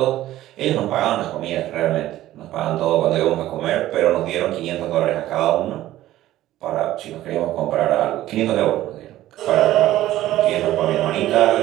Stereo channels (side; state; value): left; quieter; 14.5 dB